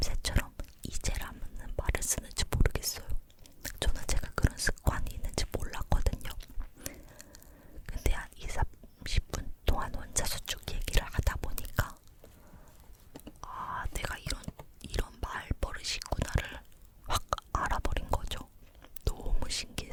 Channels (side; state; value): both; identical; correlation 1.00